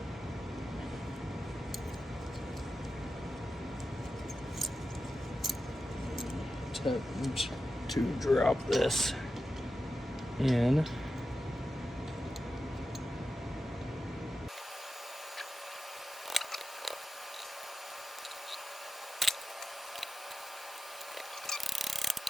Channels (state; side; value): normal; both; correlation 0.92